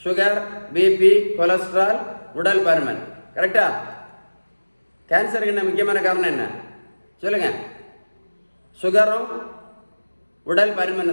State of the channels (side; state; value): both; inverted; correlation -1.00